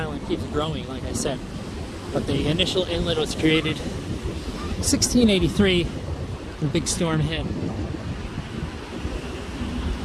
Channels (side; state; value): both; identical; correlation 1.00